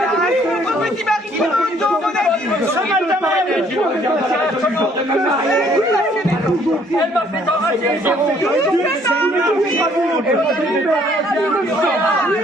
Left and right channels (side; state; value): both; normal; correlation 0.62